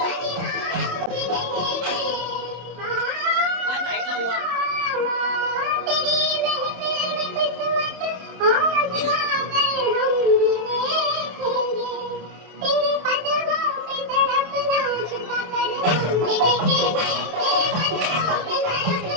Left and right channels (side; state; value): left; late; 27 ms